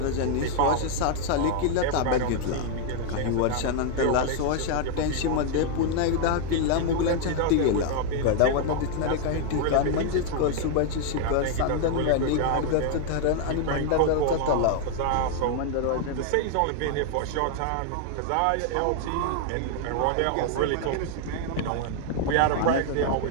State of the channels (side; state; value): both; different; correlation 0.00